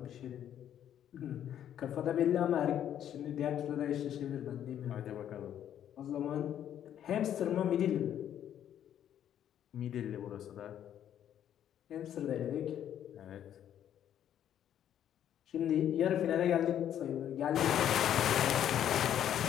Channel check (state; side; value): quieter; right; 10.4 dB